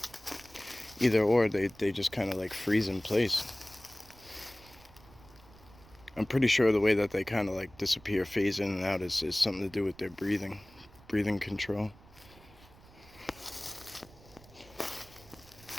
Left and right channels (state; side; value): noise; right; rumble, 24 dB below the sound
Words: either or, they just kind of like freeze in place. I'm pretty sure the way that they kind of like disappear, phase in and out is something to do with their breathing control.